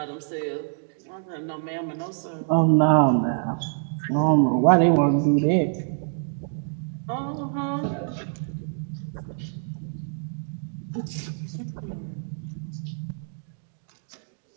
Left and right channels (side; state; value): left; silent; 61 dB below the other